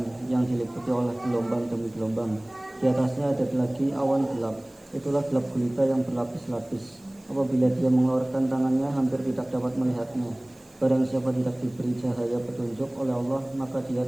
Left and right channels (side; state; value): right; noise; hiss, 29 dB below the sound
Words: yang diliputi oleh gelombang demi gelombang. Di atasnya ada lagi awan gelap. Itulah gelap gulita yang berlapis-lapis. Apabila dia mengeluarkan tangannya, hampir tidak dapat melihatnya. Barang siapa tidak diberi cahaya petunjuk oleh Allah, maka dia